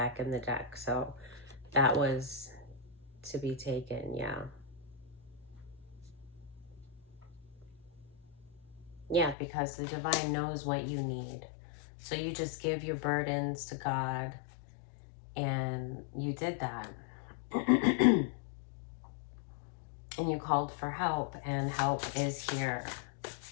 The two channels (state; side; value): drops out; right; at 9.3 s